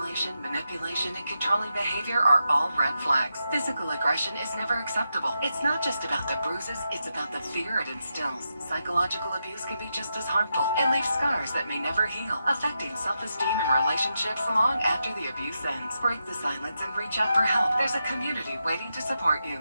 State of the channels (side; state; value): both; inverted; correlation -0.86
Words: manipulation, and control controlling behavior are all red flags. Physical aggression is never acceptable. It's not just about the bruises, it's about the fear it instills. Psychological abuse can be just as harmful and leave scars that may never heal, affecting self-esteem and relationships long after the abuse ends. Break the silence and reach out for help. There's a community waiting to support you.